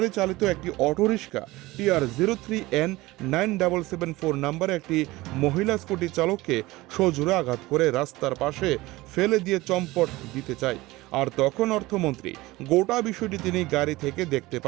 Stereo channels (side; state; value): left; quieter; 19.6 dB